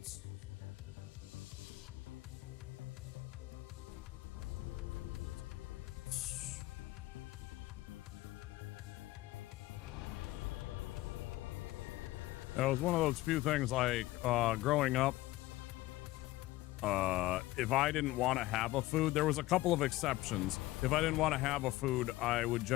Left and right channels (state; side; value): quieter; right; 17.9 dB